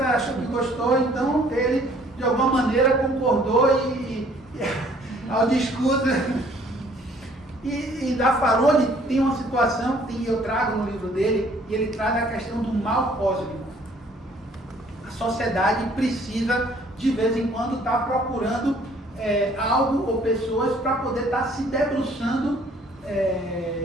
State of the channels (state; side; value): normal; both; correlation 0.59